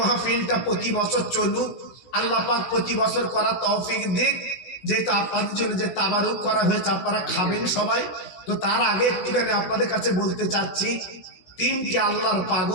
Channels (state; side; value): late; right; 16 ms